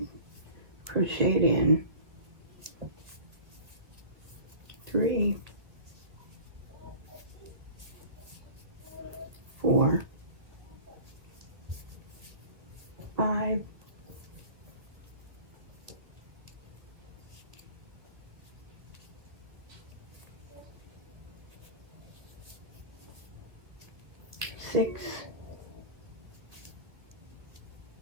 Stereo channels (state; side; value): late; left; 1.9 ms